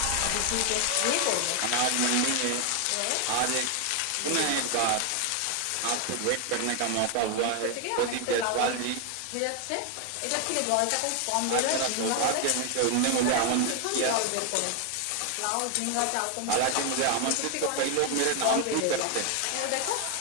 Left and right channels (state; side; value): different; both; correlation 0.00